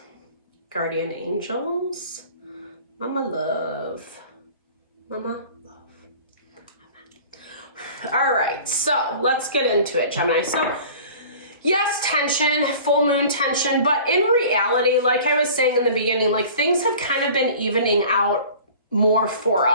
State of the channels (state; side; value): inverted; both; correlation -0.44